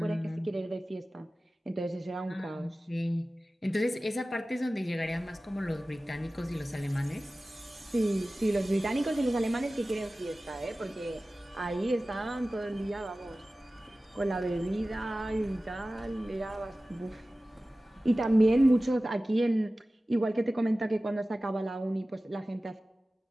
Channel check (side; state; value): both; normal; correlation 0.96